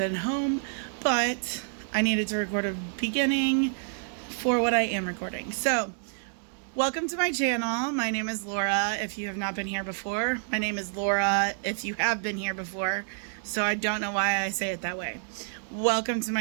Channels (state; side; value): silent; left; digital silence